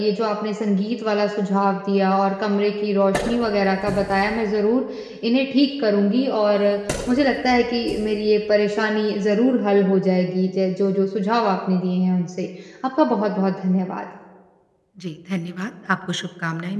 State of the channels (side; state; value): both; identical; correlation 1.00